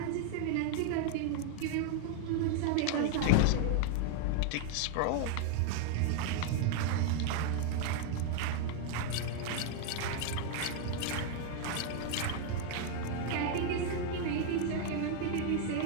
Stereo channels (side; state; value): both; different; correlation 0.00